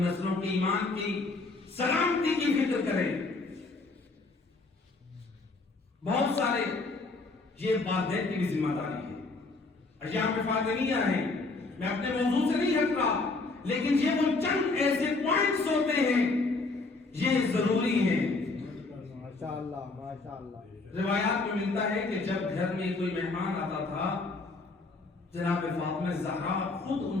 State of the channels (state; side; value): quieter; right; 3.6 dB